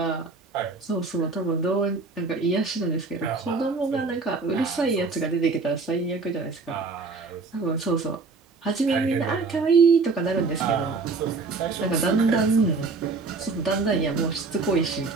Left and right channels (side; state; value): left; quieter; 4.1 dB